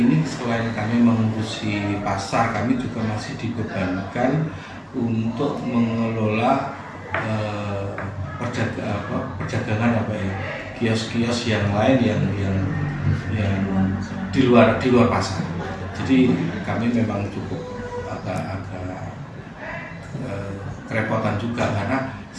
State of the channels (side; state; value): both; identical; correlation 1.00